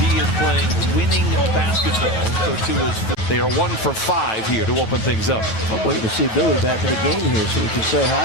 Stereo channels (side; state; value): right; late; 9.1 ms